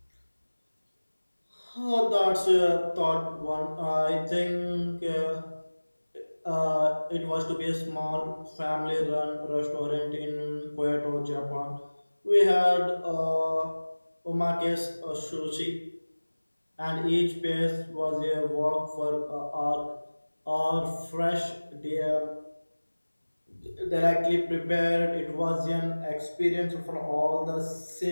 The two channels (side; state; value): both; inverted; correlation -1.00